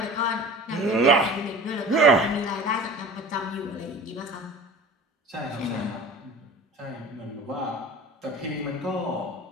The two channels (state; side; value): normal; both; correlation 0.39